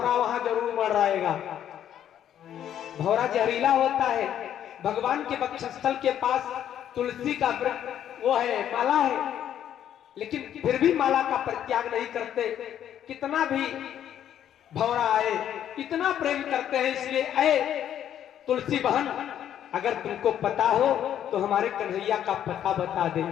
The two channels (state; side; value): quieter; right; 10.3 dB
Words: वहां जरूर मडराएगा। भौरा जहरीला होता है, भगवान के वक्षस्थल के पास तुलसी का वृक्ष वो है, माला है, लेकिन फिर भी माला का परित्याग नहीं करते। कितना भी भौरा आए, इतना प्रेम करते हैं। इसलिए ऐ तुलसी बहन, अगर तुमको पता हो तो हमारे कन्हैया का पता बता दे।